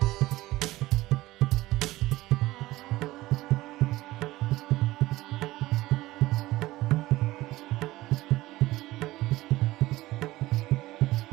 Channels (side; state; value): left; quieter; 17.8 dB